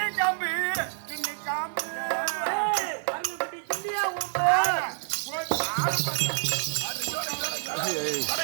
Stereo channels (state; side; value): silent; left; 59 dB below the other